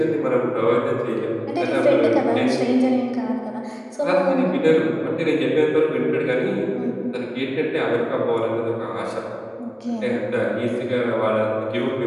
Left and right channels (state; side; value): identical; both; correlation 1.00